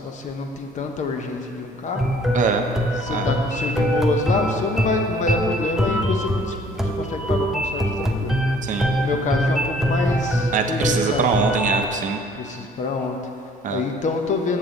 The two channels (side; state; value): both; normal; correlation 0.57